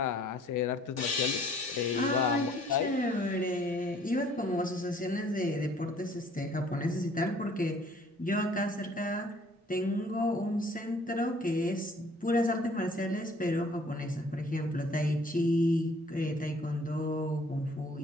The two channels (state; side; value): normal; both; correlation 0.57